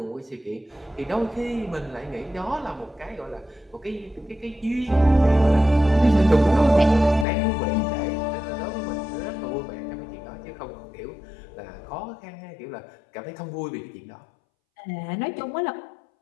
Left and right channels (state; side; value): drops out; right; at 7.2 s